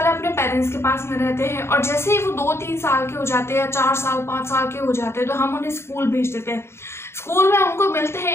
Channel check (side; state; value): right; late; 0.12 ms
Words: अपने पेरेंट्स के पास में रहते हैं, और जैसे ही वो 2-3 साल के हो जाते हैं या 4 साल 5 साल के हो जाते हैं तो हम उन्हें स्कूल भेज देते हैं। स्कूल में उनको मिलते